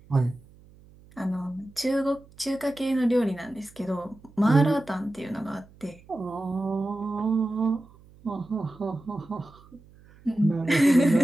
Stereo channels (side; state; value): right; noise; hum, 25 dB below the sound